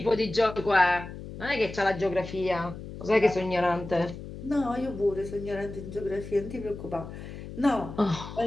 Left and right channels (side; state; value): left; noise; hum, 11 dB below the sound